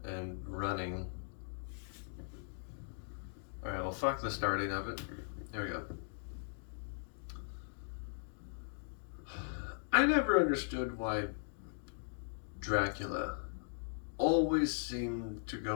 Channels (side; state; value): right; silent; digital silence